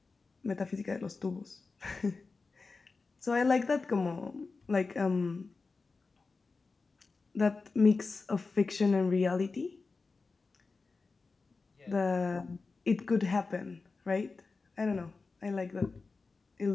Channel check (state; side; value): quieter; right; 4.1 dB